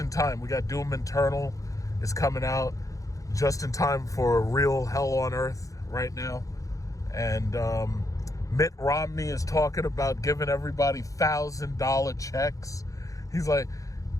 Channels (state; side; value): late; right; 0.16 ms